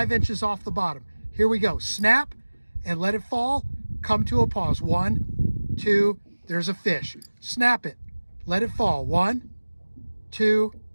inches off the bottom. Here we go. Snap and let it fall. Come to a pause. 1, 2, there's a fish. Snap it. Let it fall. 1, 2,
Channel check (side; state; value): both; inverted; correlation -1.00